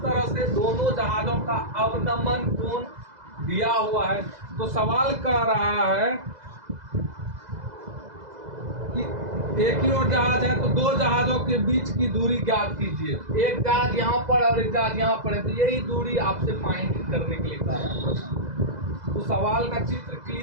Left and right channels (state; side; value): late; left; 2.0 ms